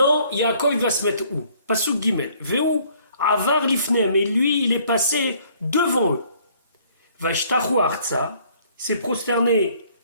Yaakov va se mettre où? Pasuk Gimel. Ve'u Avar lifnem, et lui, il est passé devant eux. Vashtachu arza, s'est prosterné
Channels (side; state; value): both; inverted; correlation -0.61